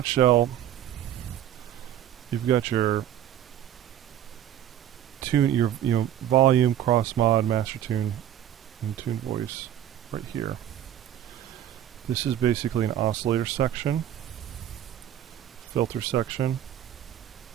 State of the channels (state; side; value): quieter; left; 11.2 dB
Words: you've got your tune, your volume, cross mod, master tune, and tune voice right here. This is basically an oscillator section, filter section,